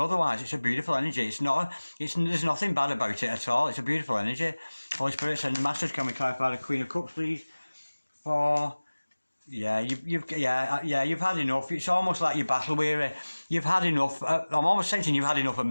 otherwise. It's a beautiful energy. There's nothing bad about it at all. It's a beautiful energy. Holy Spirit, send the Masters, can we clarify the Queen of Cups, please? You've had enough. It's almost like you're battle weary. You've had enough. I'm almost sensing you've had enough of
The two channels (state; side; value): inverted; both; correlation -1.00